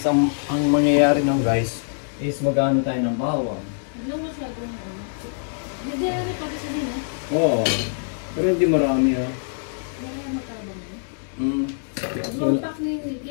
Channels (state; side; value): silent; right; digital silence